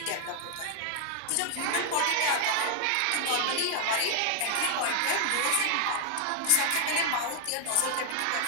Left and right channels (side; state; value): both; different; correlation 0.00